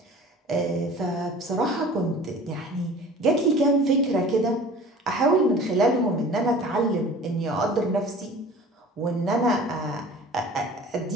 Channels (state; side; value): normal; both; correlation 0.44